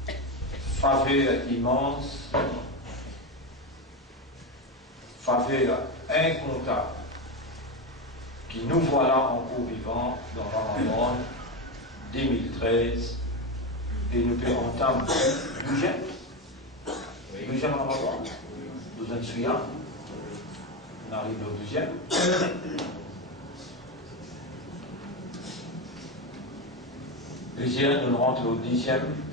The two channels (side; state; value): both; normal; correlation 0.14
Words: faveur immense, faveur incontable, qui nous voilà encore vivants dans Ramadan 2013 et nous pouvons entendre le deuxième Ramadan, nous en souvenons, on arrive au deuxième. Deuxième, nous rentrons au 10e